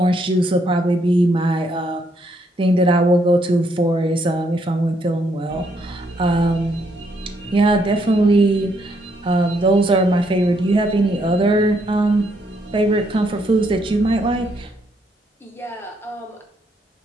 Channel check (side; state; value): both; normal; correlation 0.73